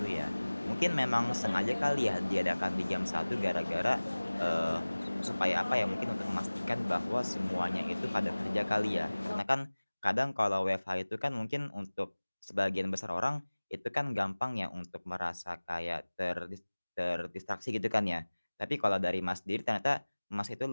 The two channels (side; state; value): both; inverted; correlation -1.00